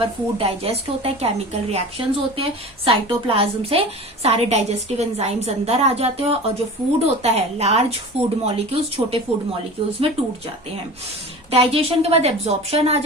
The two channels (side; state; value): both; normal; correlation 0.36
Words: फूड डाइजेस्ट होता है, केमिकल रिएक्शंस होते हैं, साइटोप्लाज्म से सारे डाइजेस्टिव एंजाइम्स अंदर आ जाते हैं, और जो फूड होता है, लार्ज फूड मॉलिक्यूल्स छोटे फूड मॉलिक्यूल्स में टूट जाते हैं। डाइजेशन के बाद एब्जॉर्प्शन आ